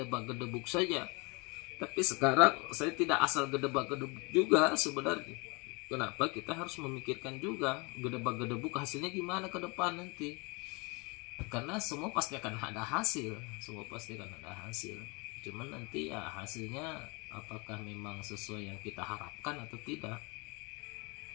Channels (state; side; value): quieter; right; 29.2 dB